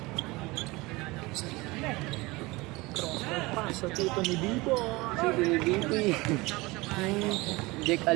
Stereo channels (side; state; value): left; quieter; 22.6 dB